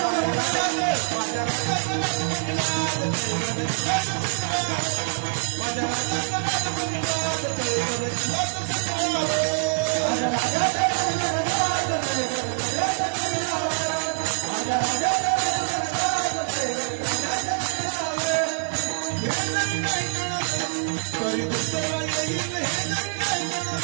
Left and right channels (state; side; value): silent; left; digital silence